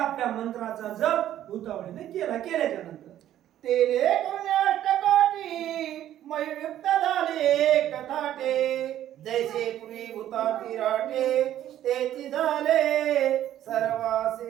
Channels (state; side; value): quieter; left; 12.0 dB